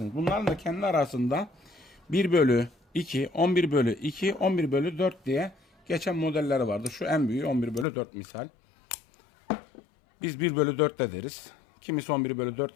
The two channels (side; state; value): right; drops out; at 7.9 s